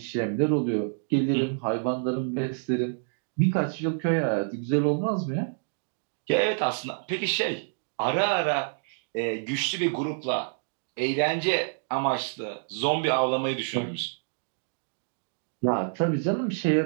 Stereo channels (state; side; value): silent; left; digital silence